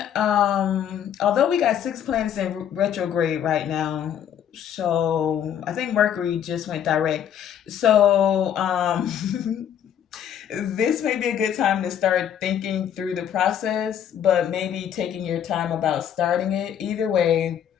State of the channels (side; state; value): right; quieter; 9.4 dB